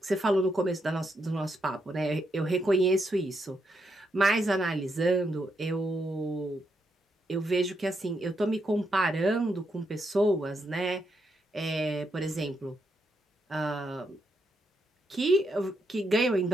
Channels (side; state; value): both; normal; correlation 0.80